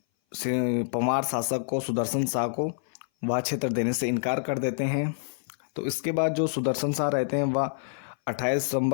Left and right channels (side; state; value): right; silent; 58 dB below the other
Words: परमार शासक को, सुदर्शन शाह को वह क्षेत्र देने से इनकार कर देते हैं। तो इसके बाद जो सुदर्शन शाह रहते हैं वह 28